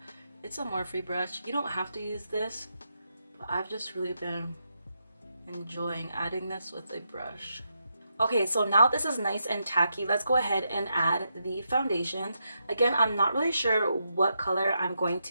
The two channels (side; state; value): both; inverted; correlation -0.83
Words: it's a Morphe brush. You don't have to use this, but I've just really been enjoying adding this with a brush. Okay, so now this is nice and tacky. Let's go ahead and add the foundations. Again, I'm not really sure what color I'm going